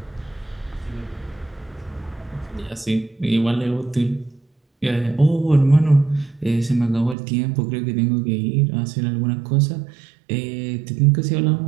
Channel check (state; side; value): drops out; left; at 7.2 s